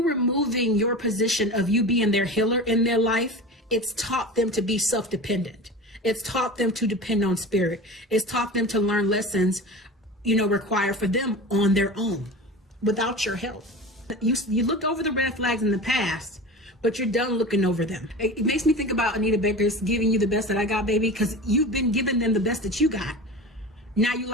removing your position of you being their healer in their life, it's taught them to be self-dependent. It's taught them to depend on spirit. It's taught them to learn lessons, you know, required for them on their own, without your help. You looked over the red flags in the past, but you're done looking over them. It makes me think about Anita Baker's giving you the best that I got, baby, because you've been giving them the best that you got. Now you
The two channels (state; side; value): normal; both; correlation 0.32